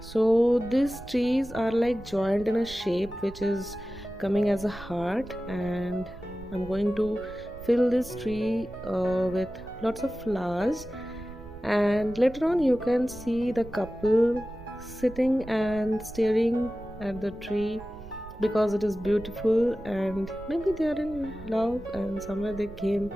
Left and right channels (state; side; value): noise; right; rumble, 16 dB below the sound